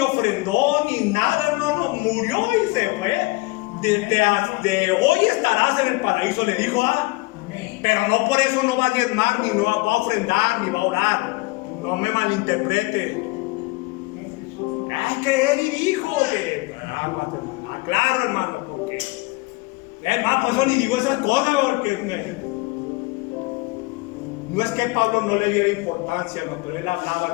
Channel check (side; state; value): right; quieter; 23.7 dB